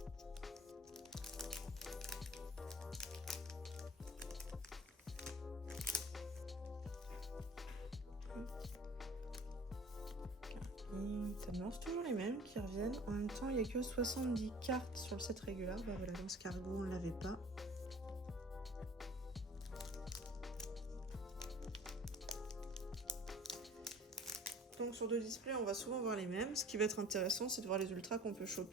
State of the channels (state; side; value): normal; both; correlation 0.47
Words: C'est toujours les mêmes qui reviennent. En même temps, il n'y a que 70 cartes sur le set régulier. Bah voilà, dans ce cargo, on ne l'avait pas. Donc sur 2 displays, on va souvent voir les mêmes. Ce qui va être intéressant, c'est de voir les ultras qu'on peut